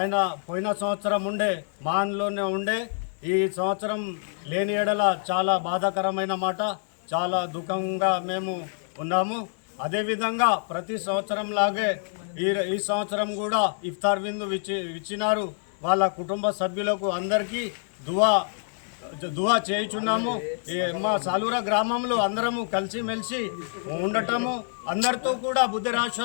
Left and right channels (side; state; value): right; silent; digital silence